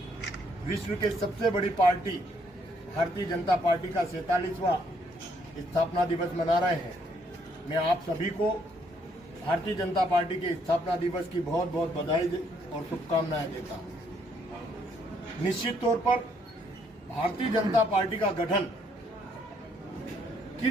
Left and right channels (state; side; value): normal; both; correlation 0.70